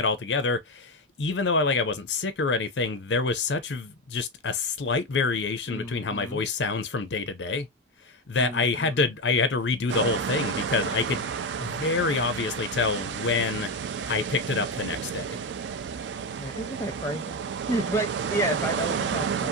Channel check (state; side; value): normal; both; correlation 0.14